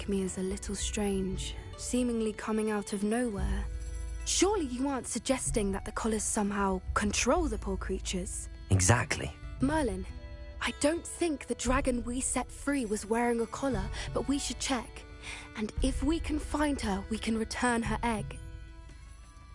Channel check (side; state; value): both; identical; correlation 1.00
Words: me as a little strange, seemingly coming out of nowhere. Surely you aren't suggesting that the collars somehow control the poor creatures? Exactly. Merlin, I don't think the dragon we set free was wearing a collar, but we should check. And if we can find her, we can return her egg.